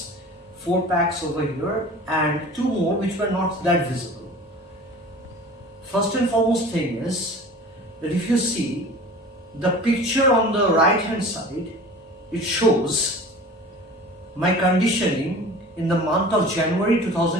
4 packs over here and 2 more which were not that visible. First and foremost thing is that if you see the picture on the right hand side, it shows my conditioning in the month of January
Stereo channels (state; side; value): normal; both; correlation 0.41